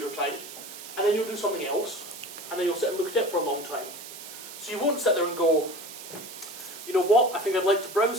time, and then you'll do something else, and then you'll sit and look at it for a long time. So you won't sit there and go, you know what, I think I'd like to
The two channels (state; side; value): noise; right; hiss, 13 dB below the sound